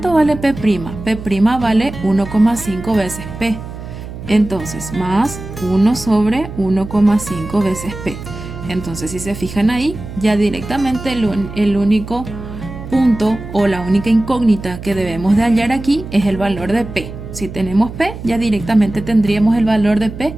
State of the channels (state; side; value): noise; right; hum, 11 dB below the sound